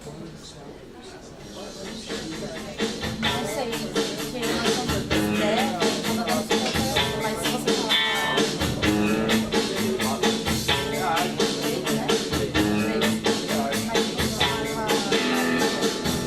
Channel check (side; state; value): both; identical; correlation 1.00